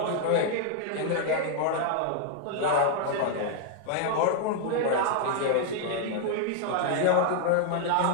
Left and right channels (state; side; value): different; both; correlation 0.00